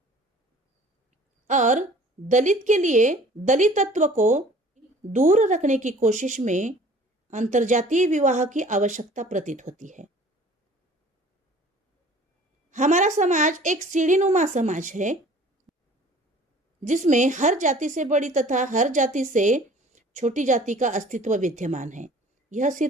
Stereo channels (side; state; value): both; normal; correlation 0.50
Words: और दलित के लिए दलितत्व को दूर रखने की कोशिश में अंतरजातीय विवाह की आवश्यकता प्रतीत होती है। हमारा समाज एक सीढ़ीनुमा समाज है जिसमें हर जाति से बड़ी तथा हर जाति से छोटी जाति का अस्तित्व विद्यमान है। यह